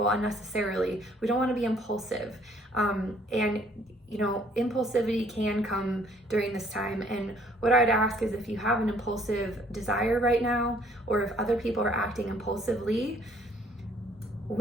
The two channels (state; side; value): normal; both; correlation 0.62